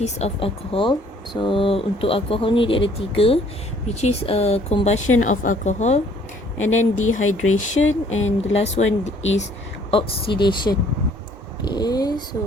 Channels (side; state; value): both; normal; correlation 0.60